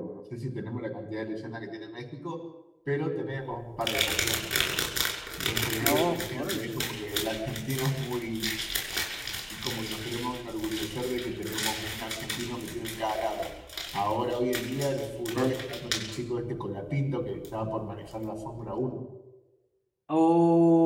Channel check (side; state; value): both; identical; correlation 1.00